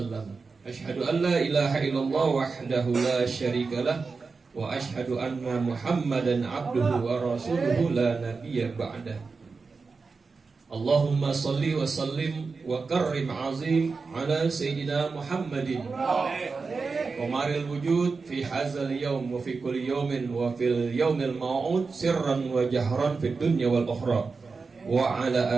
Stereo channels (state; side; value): quieter; left; 4.5 dB